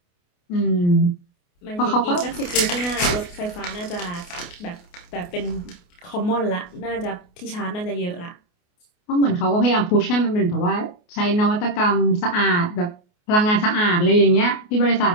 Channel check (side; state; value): right; late; 28 ms